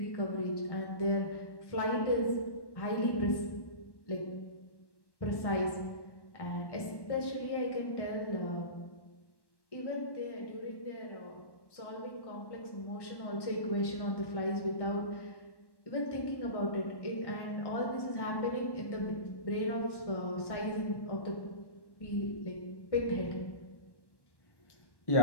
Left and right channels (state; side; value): late; right; 1.1 ms